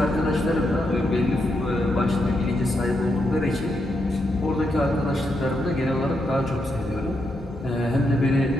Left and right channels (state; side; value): normal; both; correlation 0.81